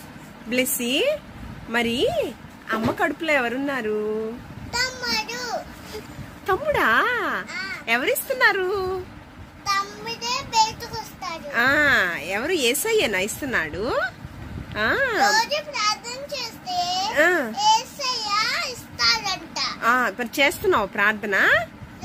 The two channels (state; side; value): identical; both; correlation 1.00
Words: Blessy, మరి అమ్మ కడుపులో ఎవరున్నారు? తమ్ముడు. తమ్ముడా? ఎవరిస్తున్నారు? తమ్ముడే బయటకు వస్తాడు. ఎవరు? యేసయ్యనా ఇస్తున్నాడు? రోజు ప్రార్థన చేస్తే యేసయ్య ఇస్తాడంట. మరి చేస్తున్నావు ప్రార్థన?